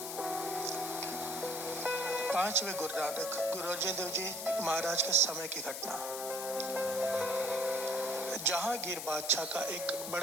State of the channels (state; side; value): noise; left; hiss, 6 dB below the sound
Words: 5वें गुरु नानक गुरु अर्जन देव जी महाराज के समय की घटना। जहांगीर बादशाह का एक